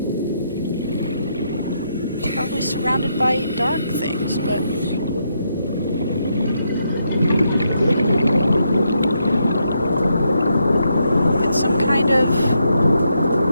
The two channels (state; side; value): inverted; both; correlation -0.79